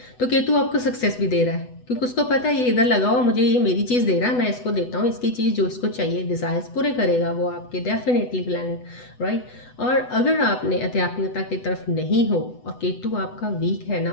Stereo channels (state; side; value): late; right; 8.0 ms